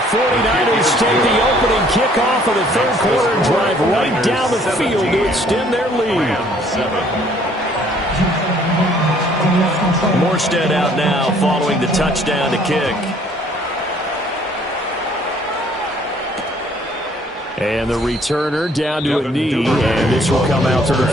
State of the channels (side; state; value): both; normal; correlation 0.60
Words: take the opening kickoff of the 3rd quarter and drive right down the field to extend their lead. Morstead out now following the touchdown to kick. And the returner down to a knee, and this will come out to the